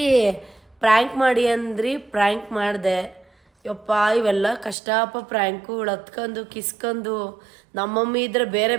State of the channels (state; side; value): drops out; left; at 4.8 s